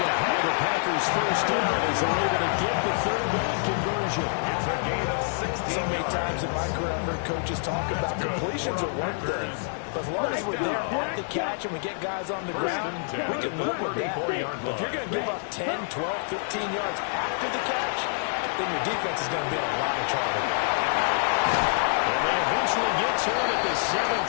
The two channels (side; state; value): right; silent; digital silence